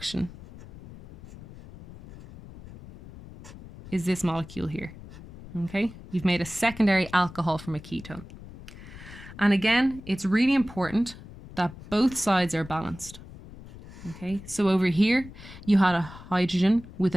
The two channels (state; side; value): noise; left; rumble, 16 dB below the sound